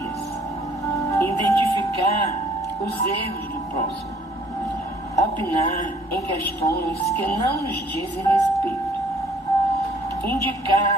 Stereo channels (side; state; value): both; normal; correlation 0.60